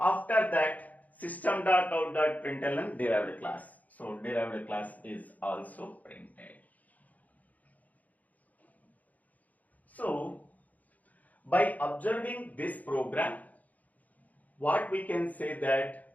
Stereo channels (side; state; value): right; late; 0.077 ms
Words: that system.out.println derived class. So derived class is also printed. So by observing this program, what we can say